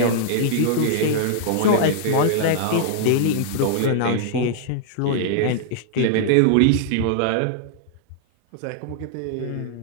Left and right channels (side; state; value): both; different; correlation -0.01